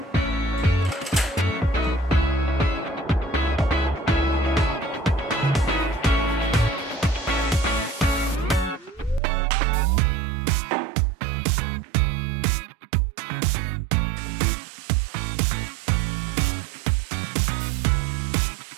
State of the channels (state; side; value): drops out; left; at 9.2 s